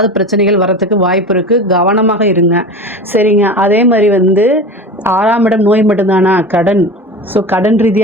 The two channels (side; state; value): both; normal; correlation 0.31